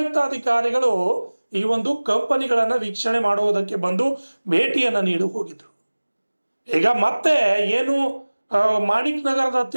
ಅಧಿಕಾರಿಗಳು ಈ ಒಂದು ಕಂಪನಿಗಳನ್ನ ವೀಕ್ಷಣೆ ಮಾಡುವುದಕ್ಕೆ ಬಂದು ಭೇಟಿಯನ್ನ ನೀಡಿ ಹೋಗಿದ್ರು. ಈಗ ಮತ್ತೆ ಏನು ಮಾಣಿಕ್ ನಗರದ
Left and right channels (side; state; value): both; inverted; correlation -1.00